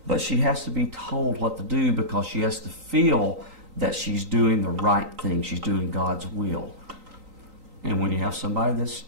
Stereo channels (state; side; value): late; left; 3.9 ms